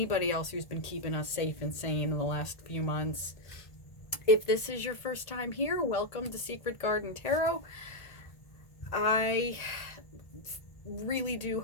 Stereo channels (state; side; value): late; right; 1.8 ms